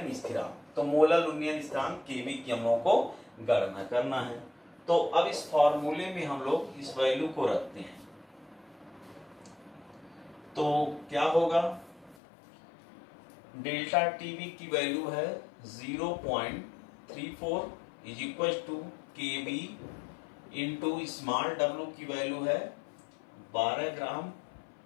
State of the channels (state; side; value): drops out; right; at 12.2 s